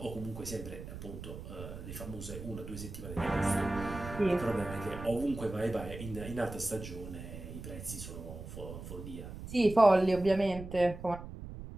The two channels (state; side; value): noise; right; rumble, 11 dB below the sound